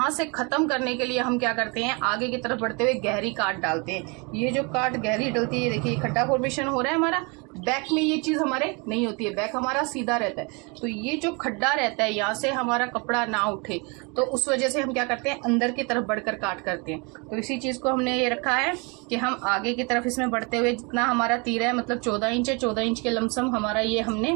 से खत्म करने के लिए हम क्या करते हैं, आगे की तरफ बढ़ते हुए गहरी काट डालते हैं। ये जो काट गहरी डलती है, देखिए खड्डा फॉर्मेशन हो रहा है हमारा। बैक में ये चीज हमारे नहीं होती है, बैक हमारा सीधा रहता है। तो ये जो खड्डा रहता है, यहाँ से हमारा कपड़ा ना उठे, तो उस वजह से हम क्या करते हैं, अंदर की तरफ बढ़कर काट करते हैं। तो इसी चीज को हमने ये रखा है कि हम आगे की तरफ इसमें बढ़ते हुए जितना हमारा तीरा है, मतलब 14 इंच है, 14 इंच के लमसम हमारा ये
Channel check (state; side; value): quieter; left; 30.6 dB